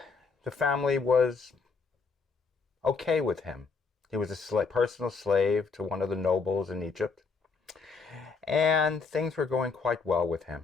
The family was okay with him. He was a personal slave to one of the nobles in Egypt, and things were going quite well with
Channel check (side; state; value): right; quieter; 4.7 dB